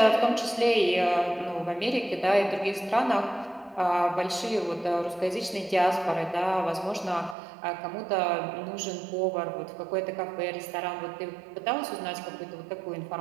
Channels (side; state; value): left; drops out; at 7.4 s